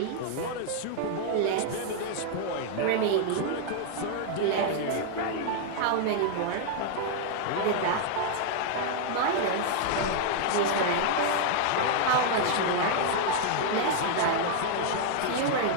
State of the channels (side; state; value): both; different; correlation 0.00